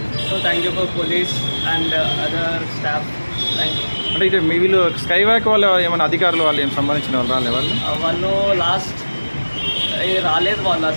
So thank you for police and other staff. Thank you. అంటే ఇటు మీ వీళ్ళు స్కై వాక్ వాళ్ళు ఏమైనా అధికారులు వాళ్ళు ఏం సంబంధించిన వాళ్ళు రాలే? వాళ్ళు లాస్ట్ రాలేదు వాళ్ళు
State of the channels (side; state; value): both; inverted; correlation -1.00